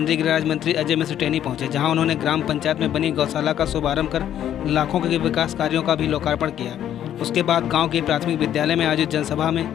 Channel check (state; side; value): quieter; right; 10.7 dB